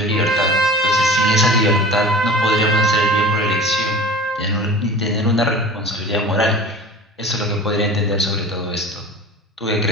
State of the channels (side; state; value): both; normal; correlation 0.38